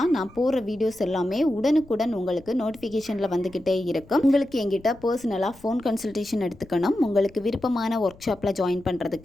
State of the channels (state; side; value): noise; left; rumble, 24 dB below the sound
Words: நான் போடுற வீடியோஸ் எல்லாமே உடனுக்குடன் உங்களுக்கு நோட்டிஃபிகேஷனில் வந்துக்கிட்டே இருக்கும். உங்களுக்கு எங்கிட்ட பர்சனலாக ஃபோன் கன்சல்டேஷன் எடுத்துக்கணும், உங்களுக்கு விருப்பமான ஒர்க் ஷாப்பில் ஜாயின்